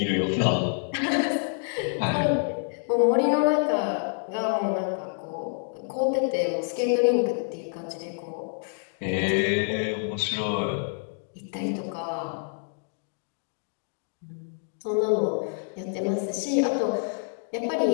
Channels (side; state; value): right; silent; 60 dB below the other